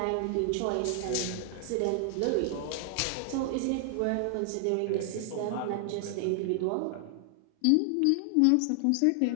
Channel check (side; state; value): both; different; correlation 0.00